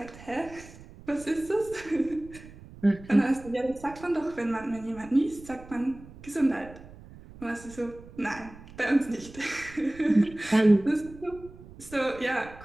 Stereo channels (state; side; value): noise; right; rumble, 18 dB below the sound